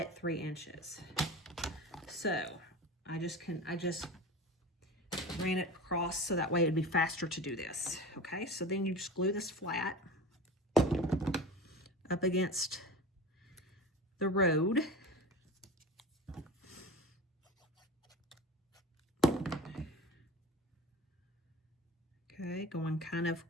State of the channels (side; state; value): both; normal; correlation 0.32